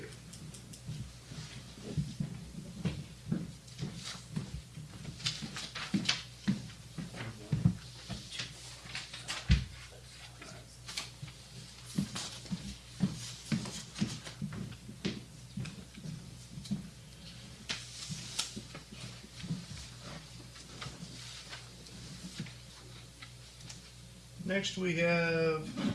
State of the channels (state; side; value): identical; both; correlation 1.00